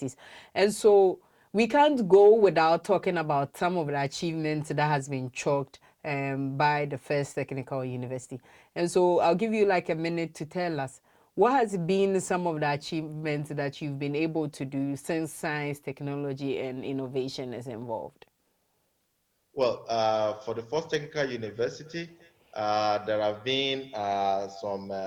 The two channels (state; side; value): identical; both; correlation 1.00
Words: And so we can't go without talking about some of the achievements that has been chalked by the first technical university. And so I'll give you like a minute to tell us what has been some of the achievements that you've been able to do since science, technology, and innovation is involved. Well, for the first technical university, there have been some